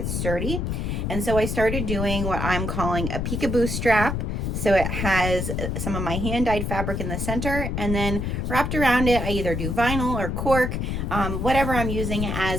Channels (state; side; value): noise; left; rumble, 2 dB below the sound